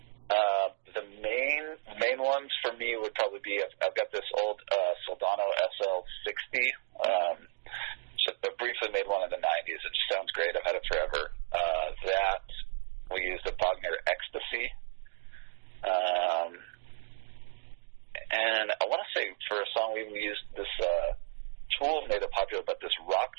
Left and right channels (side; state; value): left; silent; digital silence